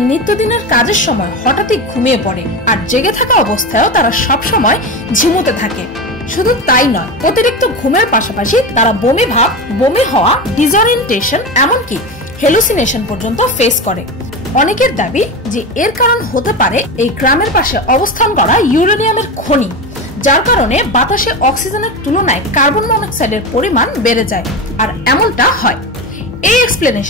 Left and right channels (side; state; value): both; normal; correlation 0.22